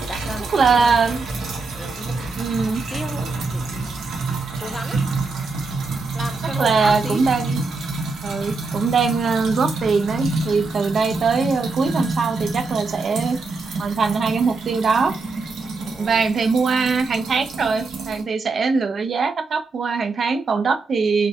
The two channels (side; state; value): left; quieter; 4.0 dB